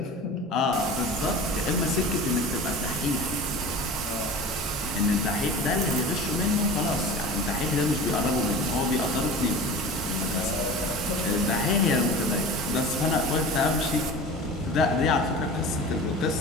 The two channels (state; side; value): normal; both; correlation 0.36